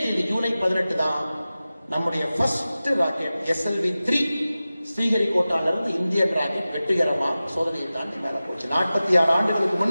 தேதி ஜூலை 18 தான் நம்முடைய ஃபர்ஸ்ட் ராக்கெட் SLV-3 ஸ்ரீஹரிகோட்டால இருந்து இந்தியன் ராக்கெட் வெற்றிகரமா சோதனையை தாண்டி மேல போச்சு. 46 ஆண்டுகளுக்கு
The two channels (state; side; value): inverted; both; correlation -0.96